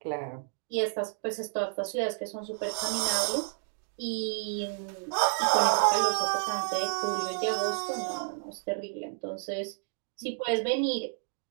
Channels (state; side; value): silent; left; digital silence